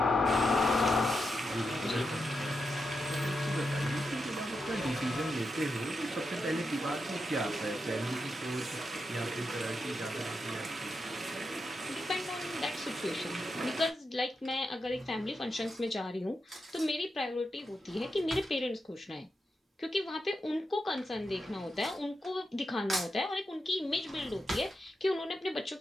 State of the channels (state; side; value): normal; both; correlation 0.86